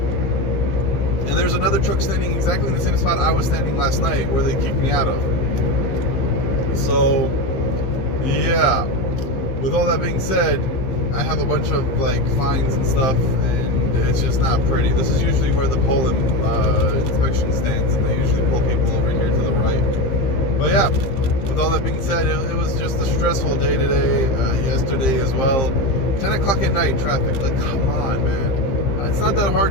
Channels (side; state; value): right; late; 15 ms